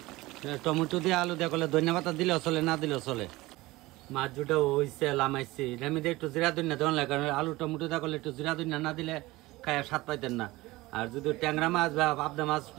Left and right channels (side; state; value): left; quieter; 19.8 dB